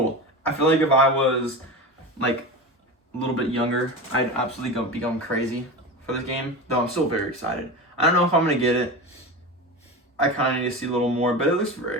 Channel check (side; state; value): both; normal; correlation 0.25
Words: I feel like if I was like a little bit younger, I'd absolutely become crazy for this game, though I'm still very excited. I don't know if I'm going to get it. I kind of need to see a little more, but it looks